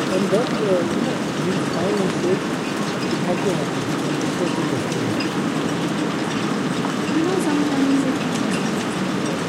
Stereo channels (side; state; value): both; identical; correlation 1.00